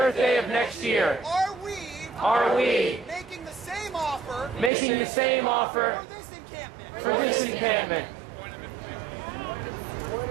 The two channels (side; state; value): left; drops out; at 4.7 s